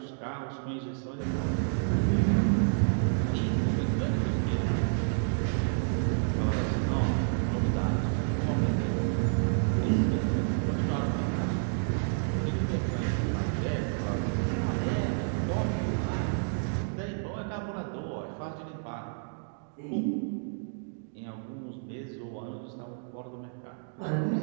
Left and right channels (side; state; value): left; silent; digital silence